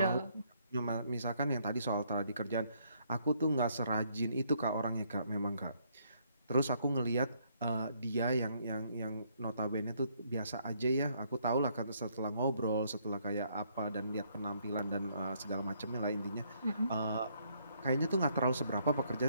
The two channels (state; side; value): inverted; both; correlation -0.69